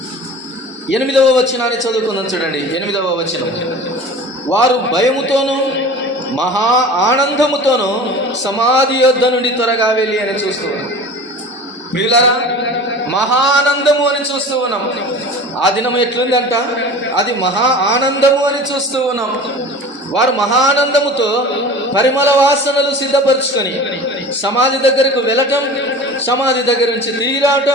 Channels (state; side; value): normal; both; correlation 0.38